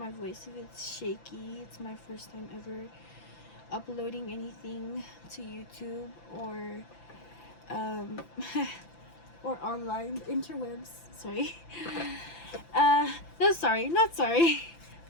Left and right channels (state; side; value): late; right; 5.9 ms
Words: voice if it's shaky. It's my first time ever uploading anything to YouTube or or online interwebs. Sorry. No, sorry, not sorry.